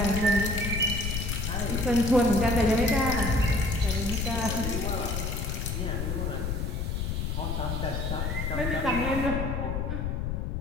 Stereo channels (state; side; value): noise; left; rumble, 1 dB below the sound